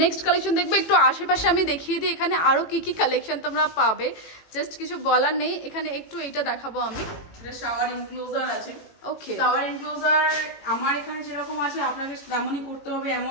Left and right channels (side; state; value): right; late; 18 ms